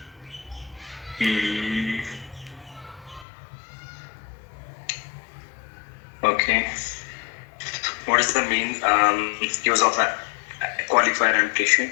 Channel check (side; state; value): right; drops out; at 3.2 s